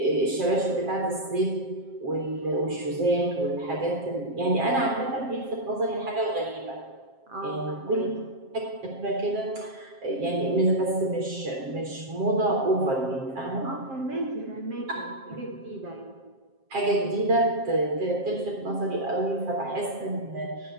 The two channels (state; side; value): late; left; 7.5 ms